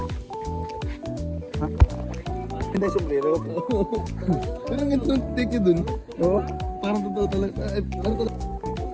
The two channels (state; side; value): identical; both; correlation 1.00